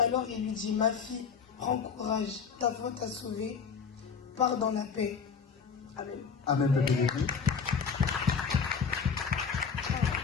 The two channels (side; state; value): right; quieter; 6.1 dB